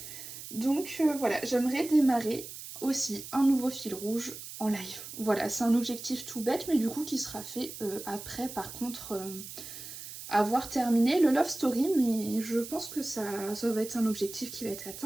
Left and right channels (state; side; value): noise; right; hiss, 12 dB below the sound